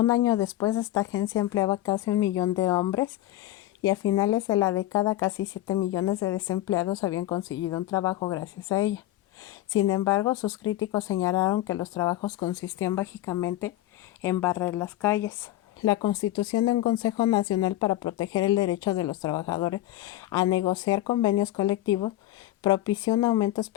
año después, esta agencia empleaba casi 1 millón de hombres y a finales de la década casi 7 millones de desempleados habían conseguido un trabajo gracias a ella. Sin embargo, sus críticos señalaron que los trabajos consistían básicamente en barrer las calles. La constitución de un Consejo Nacional para proteger el derecho de los trabajadores a negociar convenios colectivos propició un aumento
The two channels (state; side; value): quieter; right; 14.9 dB